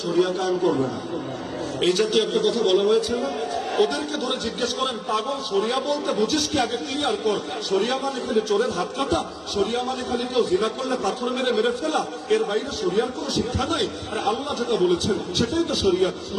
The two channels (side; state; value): both; identical; correlation 1.00